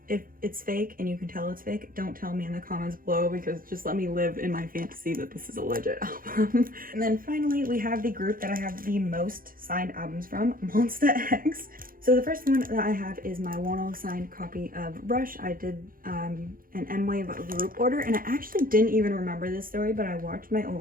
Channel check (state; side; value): late; left; 0.41 ms